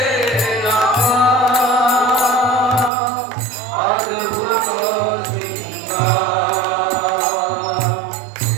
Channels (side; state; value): left; drops out; at 2.9 s